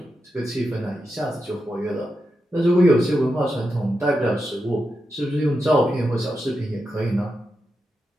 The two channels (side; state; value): both; normal; correlation 0.88